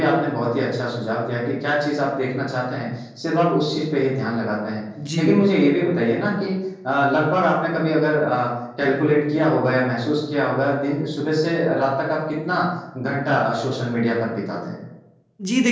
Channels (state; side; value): identical; both; correlation 1.00